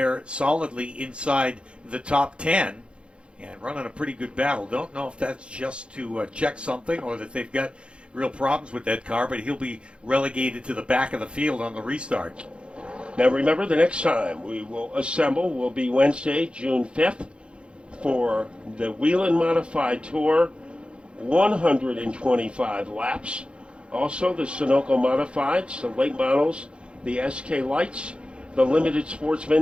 solidly inside the top 10 and running a pretty good battle. Don't know if that's just to check something or that they've got real problems with that car, but he'll be relegated to the back of the field on the restart. Now remember, the next time we will assemble will be Wednesday, June 5th, for the Whelen Modified Tour, 125 laps. Also the Sunoco Modifieds, the late models, the SK Lights, the Limited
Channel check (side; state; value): left; late; 0.057 ms